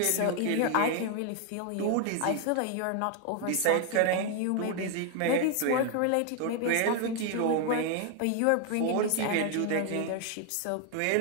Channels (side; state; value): both; different; correlation 0.00